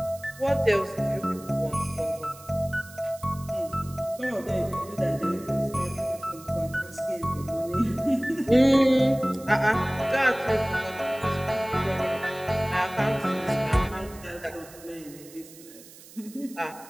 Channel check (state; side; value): noise; right; hiss, 20 dB below the sound